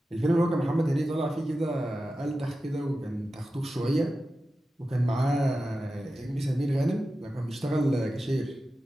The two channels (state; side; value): normal; both; correlation 0.93